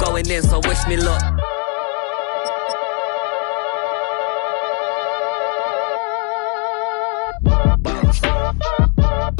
in, so wish me luck.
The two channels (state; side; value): quieter; right; 38.9 dB